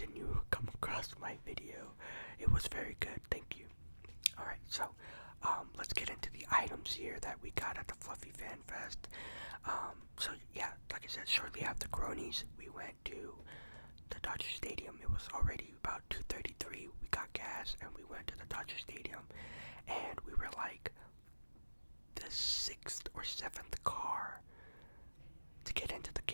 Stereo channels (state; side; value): inverted; both; correlation -1.00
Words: you come across my video, it was very good. Thank you. Alright, so let's get into the items here that we got at the Fluffy Fan Fest. So yeah, like I said, shortly after Cronies, we went to the Dodger Stadium. It was already about 2:33. We got gas and we went to the Dodger Stadium, and we were like the 6th or 7th car to get into the